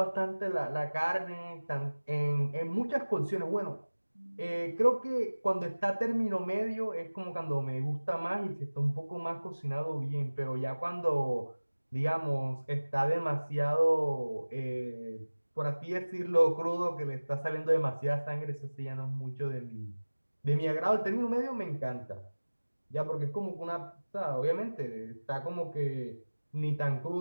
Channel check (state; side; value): inverted; both; correlation -1.00